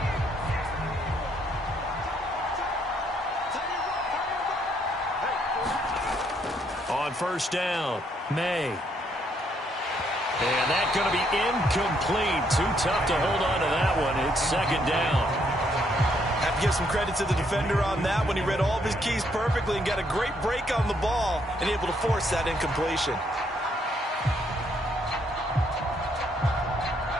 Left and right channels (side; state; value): both; normal; correlation 0.71